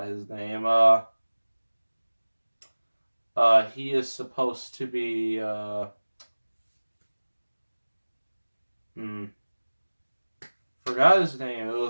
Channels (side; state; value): both; inverted; correlation -1.00